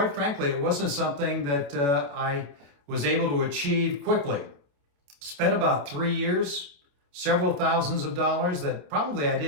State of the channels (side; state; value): left; late; 28 ms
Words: frankly, it wasn't something that I was able to achieve quickly. Spent about 3 years, several thousands of dollars that probably I